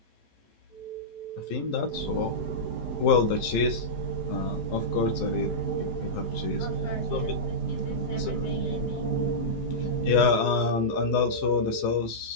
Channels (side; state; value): right; late; 12 ms